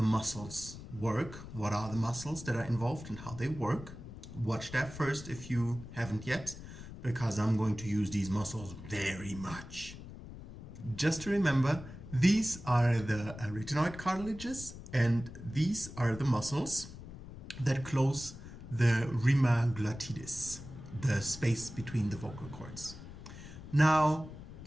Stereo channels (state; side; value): noise; left; rumble, 13 dB below the sound